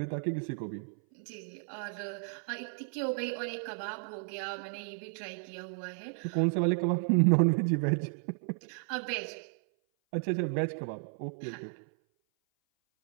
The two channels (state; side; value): silent; left; 55 dB below the other